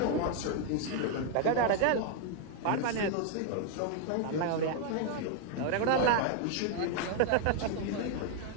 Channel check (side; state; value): both; different; correlation 0.00